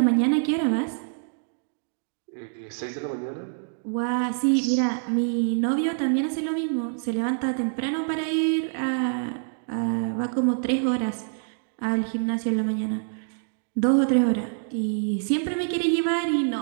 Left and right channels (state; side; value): silent; left; digital silence